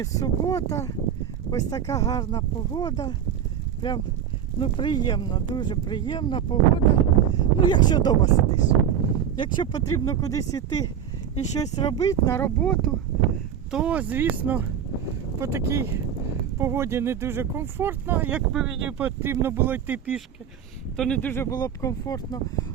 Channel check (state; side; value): quieter; left; 8.8 dB